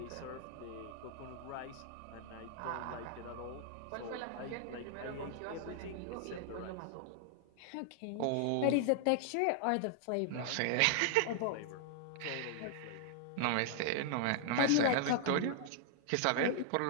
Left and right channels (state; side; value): different; both; correlation 0.00